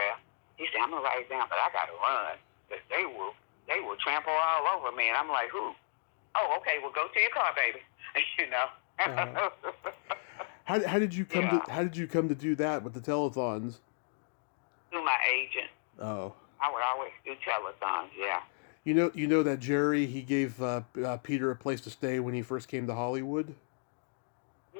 He said, I'm going to write it down, but I got to run. They will trample all over me. And I'm like, who? Oh, okay, well, go to your car, baby. How did you come to do that with the telethons? Through my agent. Oh. I would always do telethons, yeah. You know that Jerry, he gave Peter a place to stay when he first came to Hollywood?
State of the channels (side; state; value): right; silent; digital silence